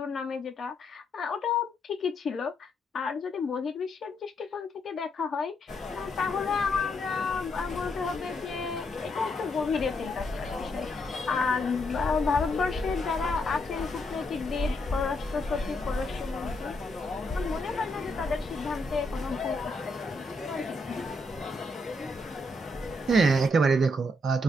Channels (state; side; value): normal; both; correlation 0.77